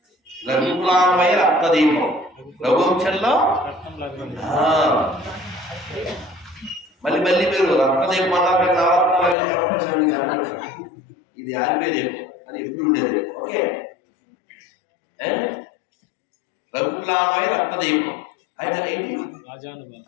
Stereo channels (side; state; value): right; drops out; at 9.3 s